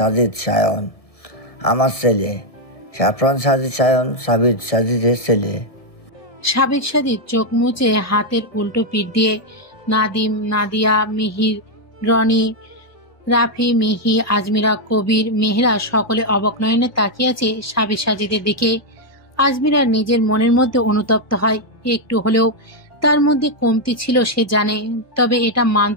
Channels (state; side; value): late; right; 1.7 ms